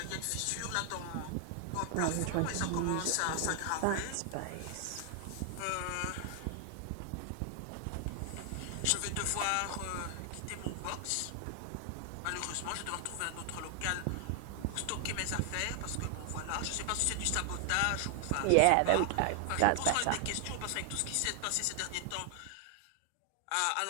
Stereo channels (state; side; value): different; both; correlation 0.00